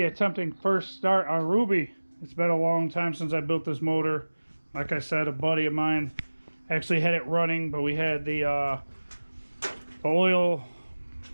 attempting first start on Ruby. It's been a long time since I built this motor. Like I said, a buddy of mine actually had it running, but we had the oil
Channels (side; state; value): both; inverted; correlation -1.00